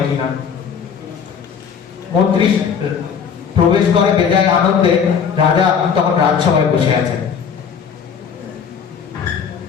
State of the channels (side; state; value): right; quieter; 7.0 dB